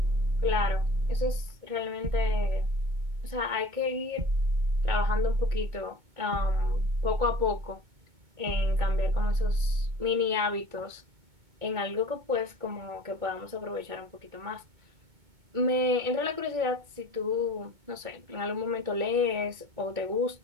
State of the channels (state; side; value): late; left; 2.2 ms